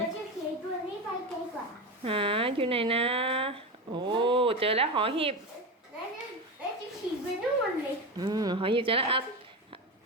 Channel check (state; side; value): normal; both; correlation 0.20